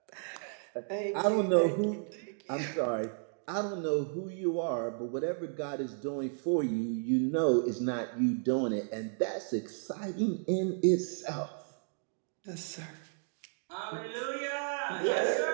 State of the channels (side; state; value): left; silent; digital silence